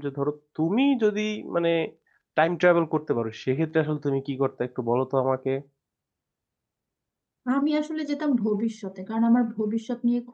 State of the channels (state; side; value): identical; both; correlation 1.00